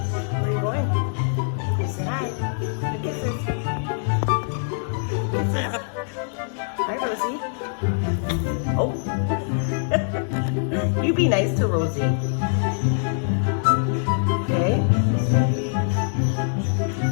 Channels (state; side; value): silent; right; digital silence